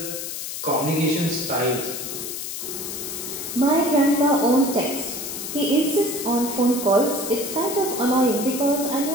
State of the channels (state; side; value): noise; left; hiss, 6 dB below the sound